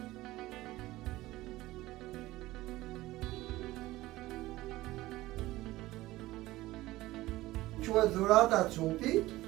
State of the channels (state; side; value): quieter; left; 17.6 dB